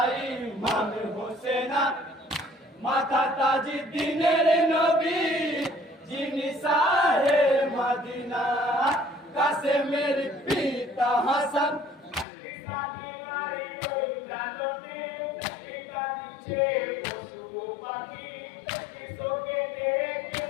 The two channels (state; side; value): drops out; right; at 12.2 s